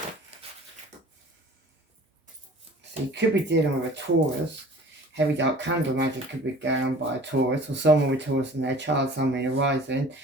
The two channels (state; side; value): normal; both; correlation 0.46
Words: So you could be dealing with a Taurus. Heavy dark candle magic could be going on by a Taurus, or someone with Taurus in their chart, someone arising.